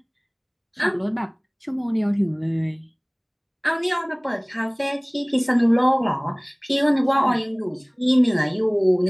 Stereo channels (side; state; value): both; identical; correlation 1.00